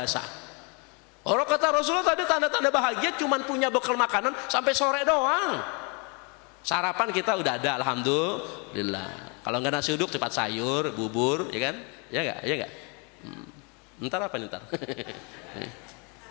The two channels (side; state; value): right; quieter; 33.0 dB